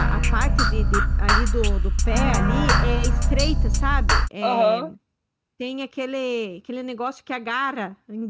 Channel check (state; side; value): identical; both; correlation 1.00